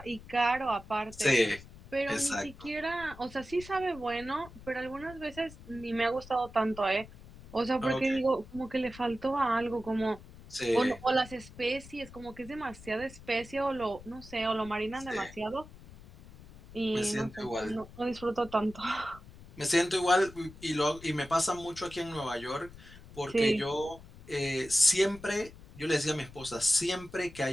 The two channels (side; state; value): left; noise; rumble, 18 dB below the sound